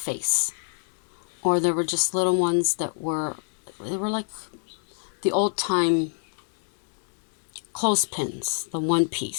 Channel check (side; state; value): right; silent; 60 dB below the other